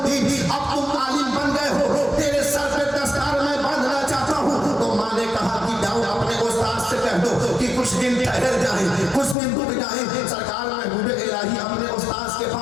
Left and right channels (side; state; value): right; drops out; at 9.3 s